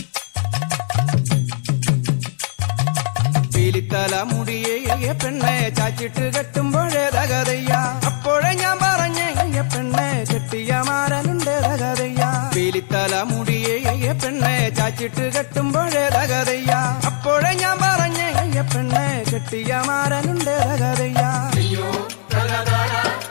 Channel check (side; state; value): right; silent; digital silence